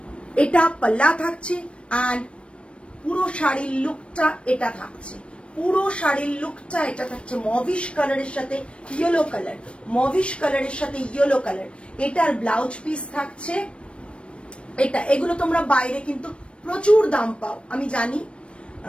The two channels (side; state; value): right; late; 0.059 ms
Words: এটা পাল্লা থাকছে এন্ড পুরো শাড়ির লুকটা এটা থাকছে, পুরো শাড়ির লুকটা এটা থাকছে মভিশ কালারের সাথে ইয়েলো কালার, মভিশ কালারের সাথে ইয়েলো কালার। এটার ব্লাউজ পিস থাকছে এটা। এগুলো তোমরা বাইরে কিন্তু প্রচুর দাম পাও আমি জানি,